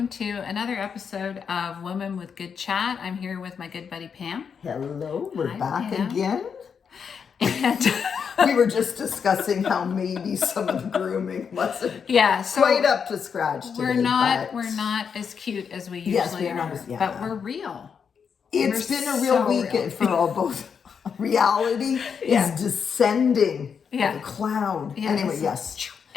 to another episode of Women with Good Chat. I'm here with my good buddy Pam. Hello, we're Hi, back Pam. again. And We were just discussing how maybe some of the grooming wasn't so quite up to scratch today. we're not but as cute as we Yes, usually we're not are, as- yeah. but we're real. it's We're been a real so weekend for all both. Reality Yeah. is descending Yeah. like a cloud. Yeah, Anyway, it's- yes.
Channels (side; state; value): right; quieter; 6.6 dB